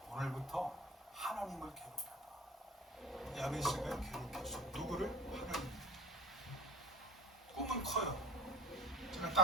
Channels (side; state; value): both; normal; correlation 0.38